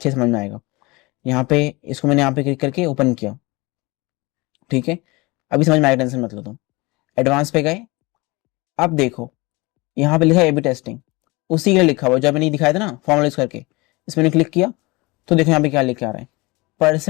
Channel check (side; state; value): right; quieter; 24.1 dB